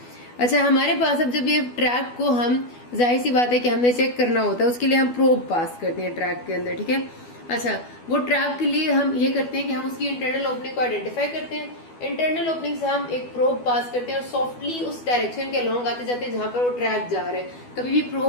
अच्छा, हमारे पास अब जब ये ट्रैक को हम, जाहिर सी बात है कि हमने चेक करना होता है, उसके लिए हम प्रोब पास करते हैं ट्रैक के अंदर, ठीक है। अच्छा, वो ट्रैक के लिए हम ये करते हैं कि हम उसकी इंटरनल ओपनिंग को आइडेंटिफाई करते हैं। इंटरनल ओपनिंग से हम एक प्रोब पास करते हैं और सॉफ्टली उस डायरेक्शन के अलोंग आते जाते जहां पर वो ट्रैक जा रहा है। कभी भी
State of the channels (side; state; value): right; late; 12 ms